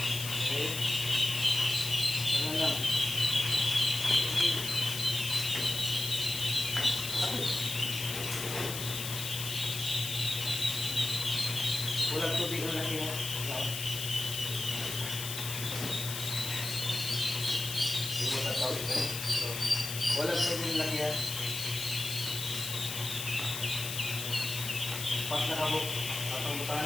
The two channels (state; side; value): noise; left; hiss, 5 dB below the sound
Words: Okay. Ano lang? Walang tubig na laki mo. Hindi mo tatawid ka. Walang tubig na laki yan. Pas na kabok. Atang butangan